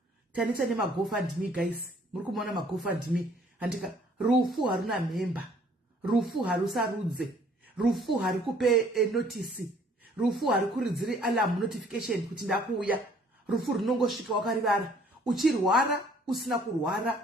tanisa nemagofundme guys muri kumuona magofundme handika rufu haruna memba rufu harusarudze rufu hari kupe notice rufu hari kuridziri alarm notification kuti ndakuuya rufu runongosvika wakarivara uchirwara usina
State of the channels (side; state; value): both; normal; correlation 0.59